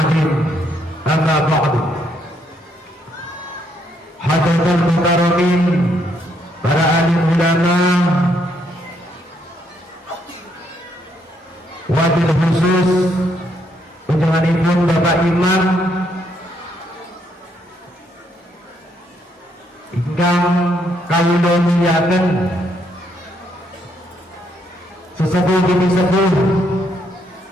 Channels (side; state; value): both; normal; correlation 0.73